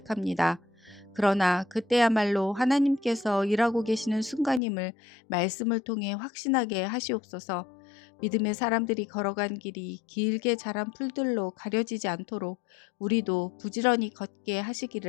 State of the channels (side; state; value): right; drops out; at 4.6 s